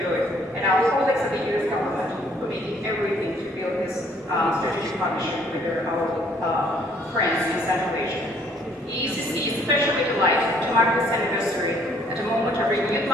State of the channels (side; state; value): both; normal; correlation 0.62